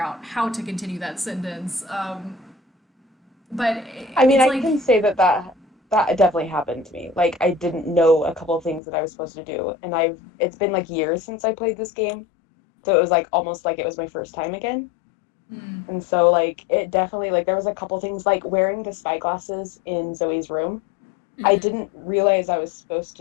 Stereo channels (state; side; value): drops out; right; at 8.8 s